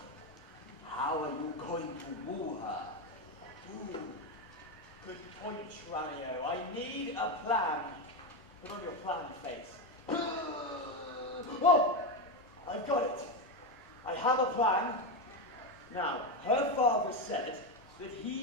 how are you going to woo her? Ooh, good point, Tranio. I need a plan. Put on your plan face. Oh, I've got it. I have a plan. Now, her father said that he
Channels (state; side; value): normal; both; correlation 0.11